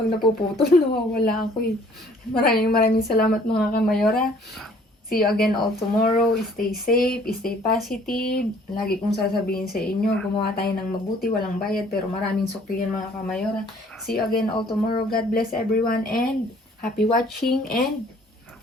napuputol, nawawala ako eh. Maraming salamat mga kamayora. See you again all tomorrow. Stay safe, stay positive. Lagi kong sasabihin sa inyo, gumawa tayo ng mabuti, walang bayad, pero maraming suklian mga kamayora. See you again all tomorrow. God bless everyone and happy watching and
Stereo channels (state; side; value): normal; both; correlation 0.57